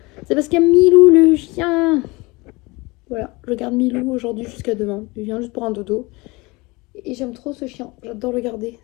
C'est parce qu'il y a Milou le chien. Voilà, je garde Milou aujourd'hui jusqu'à demain. Il vient juste pour un dodo. Et j'aime trop ce chien, j'adore le garder.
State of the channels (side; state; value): right; quieter; 24.3 dB